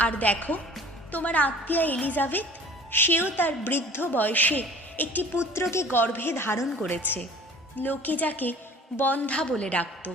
আর দেখো, তোমার আত্মীয়া এলিজাবেথ, সেও তার বৃদ্ধ বয়সে একটি পুত্রকে গর্ভে ধারণ করেছে। লোকে যাকে বন্ধ্যা বলে ডাকত,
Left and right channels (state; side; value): normal; both; correlation 0.47